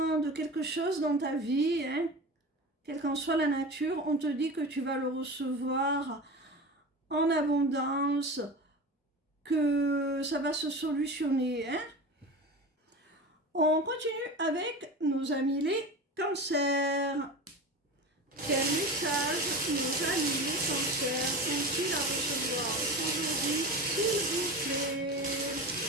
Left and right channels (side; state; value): both; normal; correlation 0.29